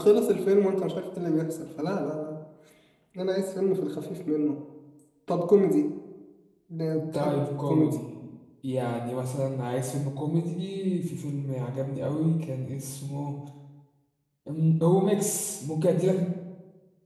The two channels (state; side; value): identical; both; correlation 1.00